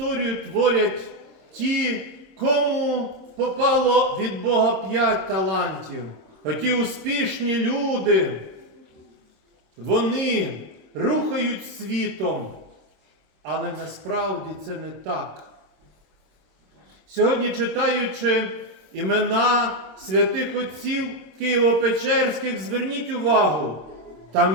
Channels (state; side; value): late; left; 26 ms